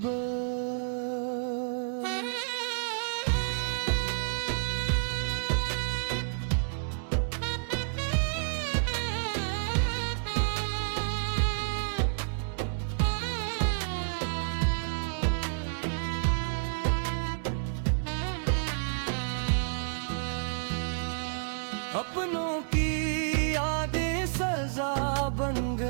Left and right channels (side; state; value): left; silent; digital silence